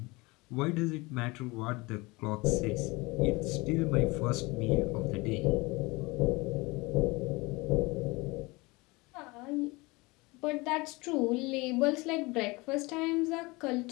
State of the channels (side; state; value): right; quieter; 24.2 dB